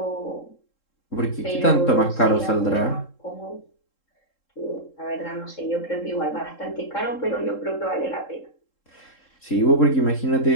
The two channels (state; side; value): late; right; 3.7 ms